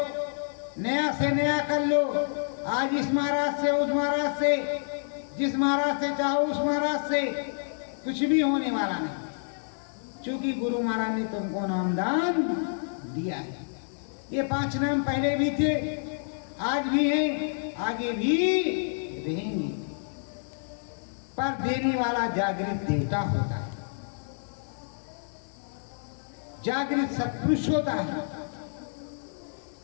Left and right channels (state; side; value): silent; right; digital silence